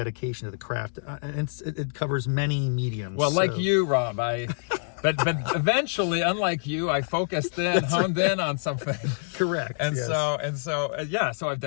to the craft. And it covers many mediums. Well, like you, Rob, but eventually, unlike you, I focused in, honed in on something. Correct. And yes. So I've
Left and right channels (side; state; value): right; silent; digital silence